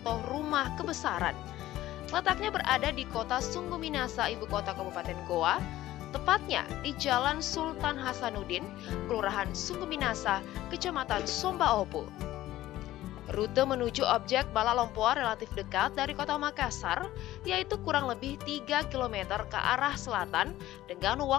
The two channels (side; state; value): right; quieter; 15.0 dB